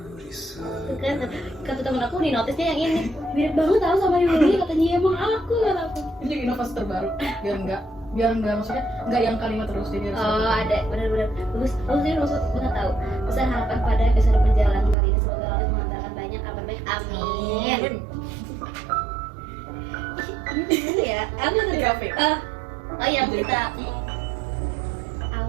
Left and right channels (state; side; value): drops out; left; at 15.0 s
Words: Itu kan kata temen aku di notisnya yang ini mirip banget tau sama Yuli, katanya emang aku kata aku. Ini juga inovasi terbaru biar enggak maksudnya enggak yang kalimat terus jadi ada benar-benar bagus sih maksud nggak tahu. Besar harapan pada episode perjalanan kali ini, semoga Allah mengantarkan banyak kabar baik, amin. Ini ya apa tadi? Oh yang kita